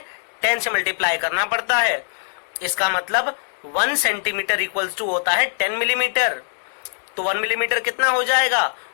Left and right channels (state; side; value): silent; right; digital silence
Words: 10 से मल्टीप्लाई करना पड़ता है। इसका मतलब 1 सेंटीमीटर इक्वल्स टू होता है 10 मिलीमीटर। तो 1 मिलीमीटर कितना हो जाएगा?